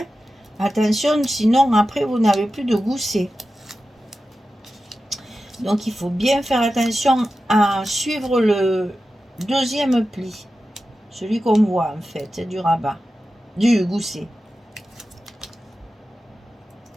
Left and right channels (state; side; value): normal; both; correlation 0.92